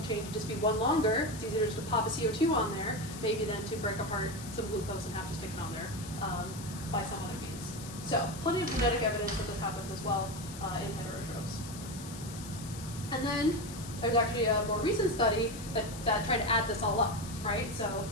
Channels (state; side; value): noise; left; hiss, 14 dB below the sound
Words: chain to just be one longer. It's easier just to pop a CO2 on there, maybe than to break apart some glucose and have to stick it on there by some other means. So plenty of genetic evidence that this happens as well in heterotrophs. And then there's actually a more recent study that tried to add this all up, right? So